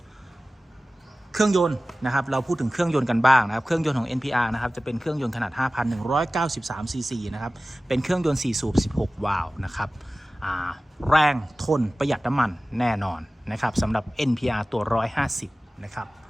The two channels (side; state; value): both; normal; correlation 0.97